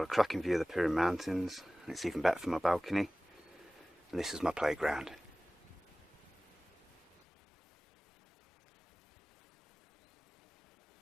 a cracking view of the Pirin mountains, and it's even better from my balcony. And this is my playground.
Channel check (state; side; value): drops out; right; at 7.2 s